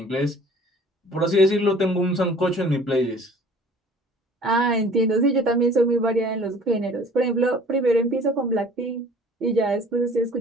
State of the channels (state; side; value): normal; both; correlation 0.50